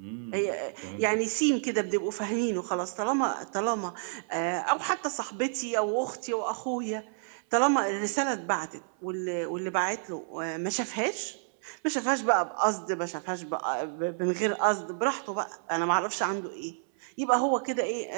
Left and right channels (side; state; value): left; silent; 58 dB below the other